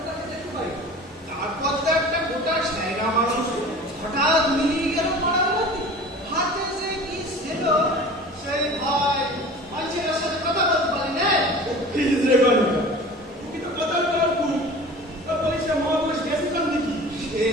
তাকে দেখতে পাই। তারপর তো একটা গোটা সাইরা মানুষ হঠাৎ মিলিয়ে গেল পাড়ার মধ্যে। হাতে যে কি ছিল সেই ভয় মানুষের সাথে কথা বলতে পারি না।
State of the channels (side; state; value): both; normal; correlation 0.40